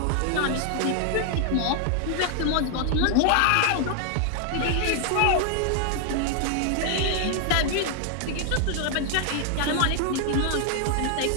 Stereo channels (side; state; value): both; different; correlation 0.00